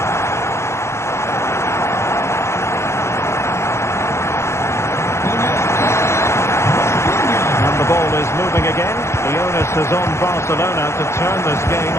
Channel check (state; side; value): late; right; 0.13 ms